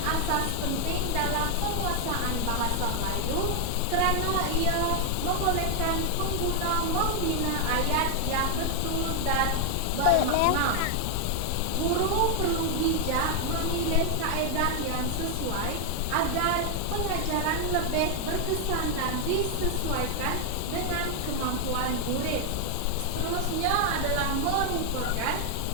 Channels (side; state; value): both; different; correlation 0.01